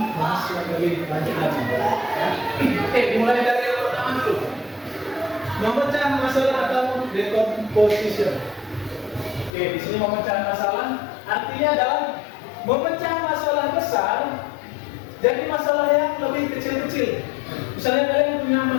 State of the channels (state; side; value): drops out; right; at 9.5 s